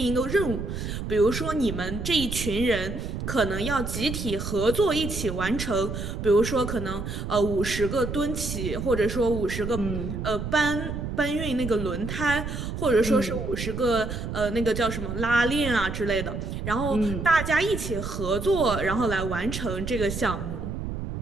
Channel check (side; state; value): right; noise; rumble, 5 dB below the sound